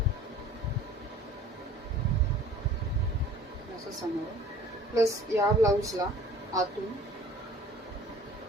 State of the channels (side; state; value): both; normal; correlation 0.48